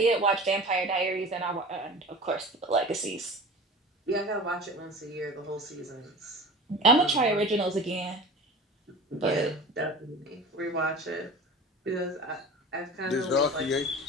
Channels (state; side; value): normal; both; correlation 0.37